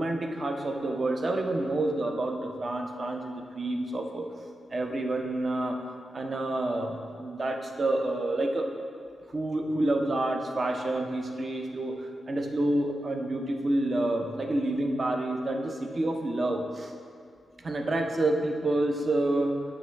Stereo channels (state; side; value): normal; both; correlation 0.90